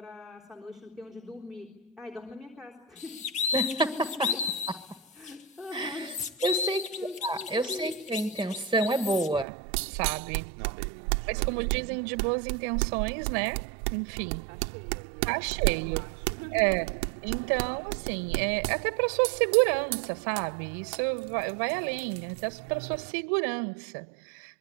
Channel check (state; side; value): drops out; left; at 9.5 s